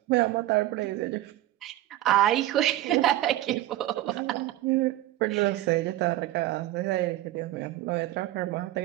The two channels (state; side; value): quieter; left; 15.1 dB